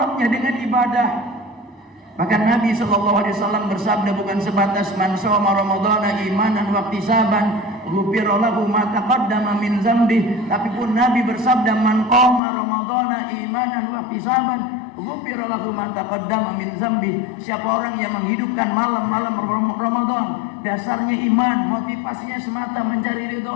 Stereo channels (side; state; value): right; drops out; at 12.4 s